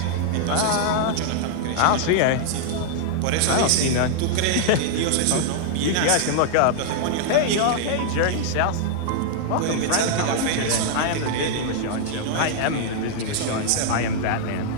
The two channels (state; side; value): different; both; correlation -0.01